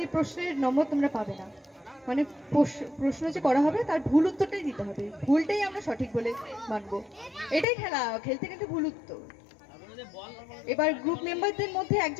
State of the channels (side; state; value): right; drops out; at 7.7 s